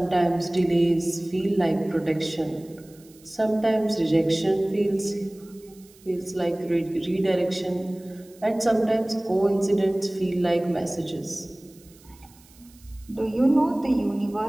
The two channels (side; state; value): right; noise; hiss, 27 dB below the sound